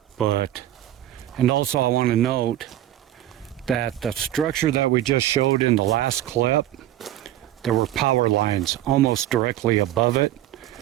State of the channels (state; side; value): quieter; left; 13.2 dB